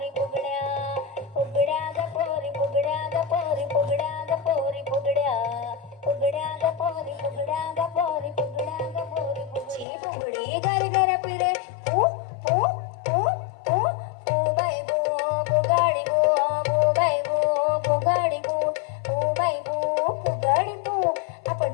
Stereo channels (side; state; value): right; drops out; at 9.9 s